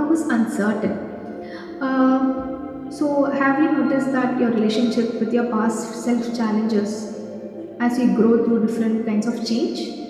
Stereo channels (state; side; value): identical; both; correlation 1.00